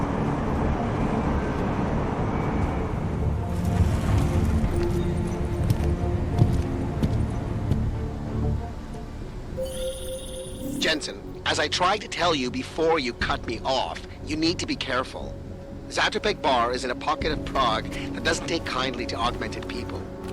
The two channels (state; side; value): identical; both; correlation 1.00